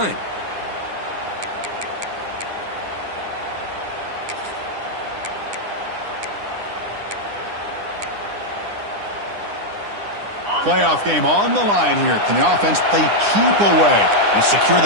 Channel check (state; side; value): late; left; 9.9 ms